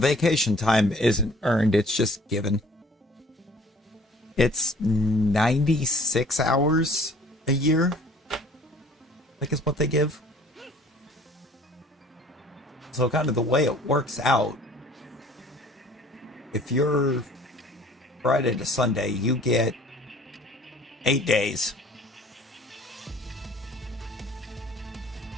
time isn't earned, it's just given. It's 96 hours a year, I think is what they give. So kind of the way it works out, if you're Friday to Sunday, you get 8 days.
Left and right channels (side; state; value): both; normal; correlation 0.53